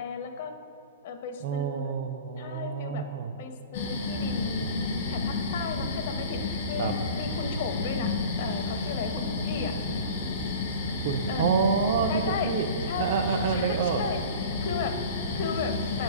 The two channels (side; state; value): both; inverted; correlation -0.38